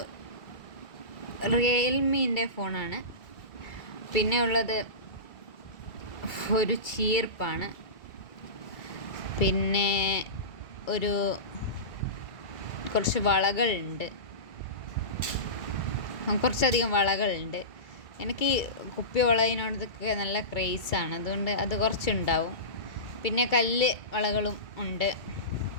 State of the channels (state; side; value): late; right; 2.5 ms